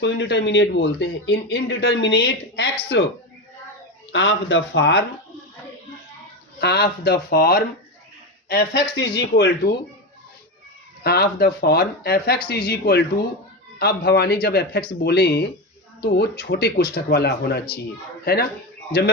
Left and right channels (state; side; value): normal; both; correlation 0.17